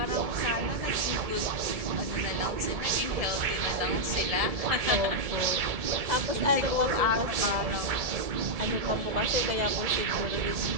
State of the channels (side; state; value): left; late; 1.7 ms